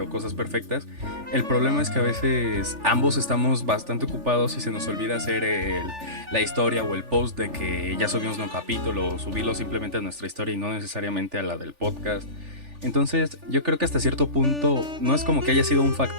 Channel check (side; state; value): left; late; 3.4 ms